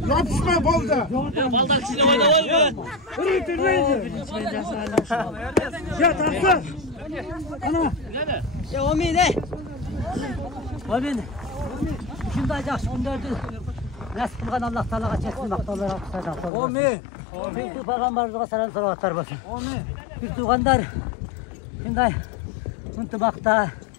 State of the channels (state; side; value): drops out; right; at 16.5 s